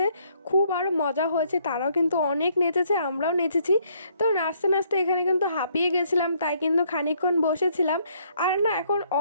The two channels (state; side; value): inverted; both; correlation -0.67